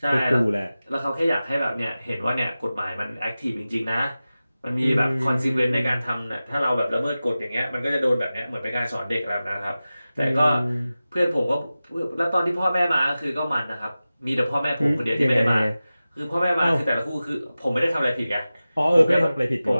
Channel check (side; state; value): both; inverted; correlation -0.96